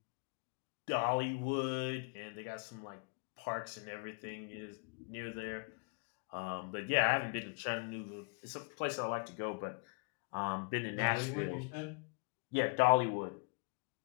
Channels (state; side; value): quieter; right; 37.3 dB